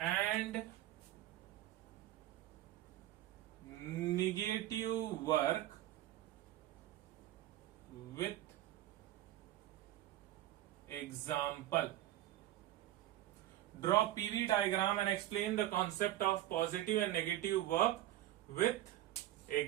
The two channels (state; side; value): quieter; left; 14.2 dB